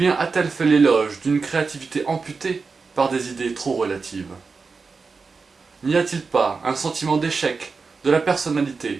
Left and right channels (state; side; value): quieter; left; 4.6 dB